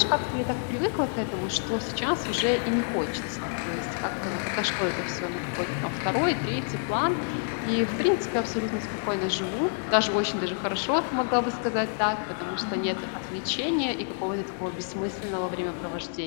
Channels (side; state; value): right; silent; 59 dB below the other